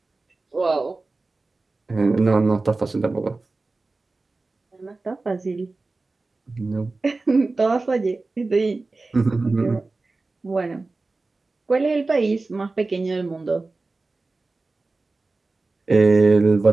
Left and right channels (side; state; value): left; quieter; 3.5 dB